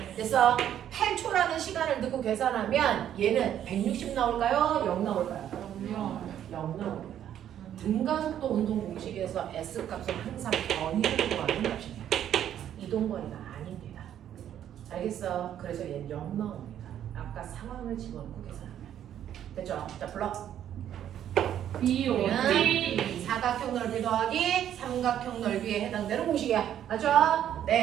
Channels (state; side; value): quieter; left; 10.5 dB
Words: 됐어. 8초라는 시간을 넣고 계산하면 얘는 160 나올까요? 0 나올까요? 0 나옵니다. 등가속도 운동 공식에서 S 값은 항상 변이를 구하는 값입니다. 이동거리가 아닙니다. 알겠어? 그래서 얘는 0 나옵니다. 아까 상황을 집어넣고 계산하면 됐죠? 자, 불러. BOT 사각형 넓이 더하기 삼각형 넓이에 해당되는 공식이야. 맞죠?